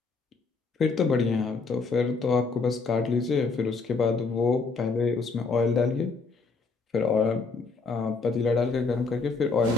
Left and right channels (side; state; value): right; quieter; 4.3 dB